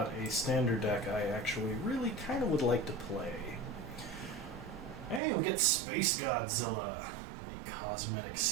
a standard deck I actually really kind of would like to play. Hey, we get Space Godzilla, a cosmetic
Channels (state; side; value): drops out; left; at 5.2 s